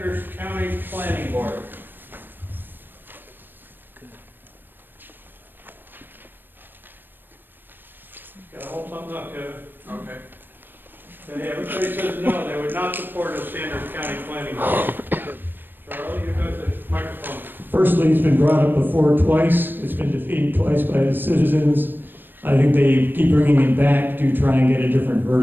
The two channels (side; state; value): left; late; 0.094 ms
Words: County Planning Board? Gotta hold something up, Kevin. Okay. Okay, everybody says no, they would not support a Sanders County Planning Board. Charlie, you got the microphone. Firstly, it's been brought up before twice, it's been defeated twice by the citizens. I think they keep bringing it back to try and get a different